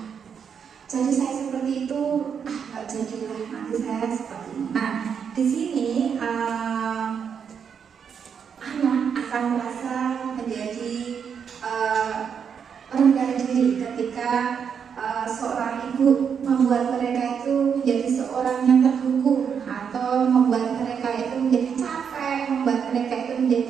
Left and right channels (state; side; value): quieter; left; 7.1 dB